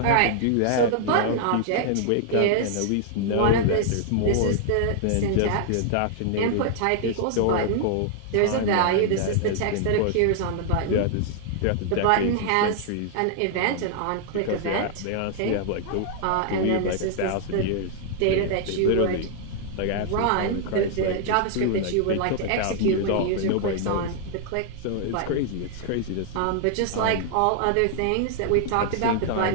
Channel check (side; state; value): both; different; correlation 0.00